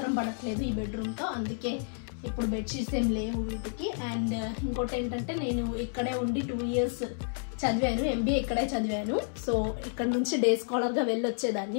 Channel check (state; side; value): silent; right; 58 dB below the other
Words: పడట్లేదు ఈ బెడ్రూమ్తో. అందుకే ఇప్పుడు బెడ్షీట్స్ ఏం లేవు వీటికి. అండ్ ఇంకోటి ఏంటంటే నేను ఇక్కడే ఉండి 2 years చదివాను. MBA ఇక్కడే చదివాను. సో ఇక్కడ నుంచి డే స్కాలర్గా